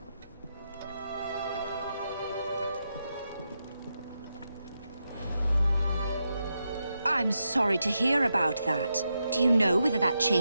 I'm sorry to hear about that. Do you know whether that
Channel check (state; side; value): inverted; both; correlation -0.86